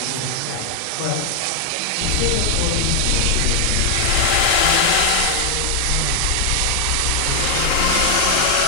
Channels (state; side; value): different; both; correlation 0.00